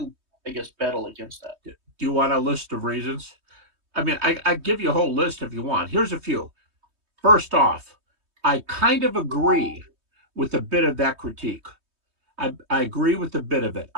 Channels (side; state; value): left; late; 3.2 ms